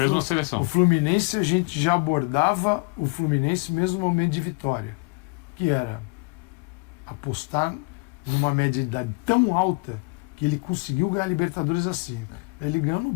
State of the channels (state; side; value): quieter; right; 30.1 dB